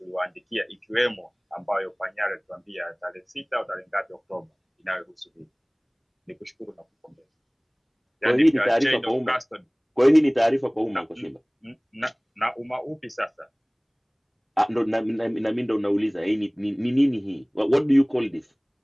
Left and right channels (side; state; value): both; identical; correlation 1.00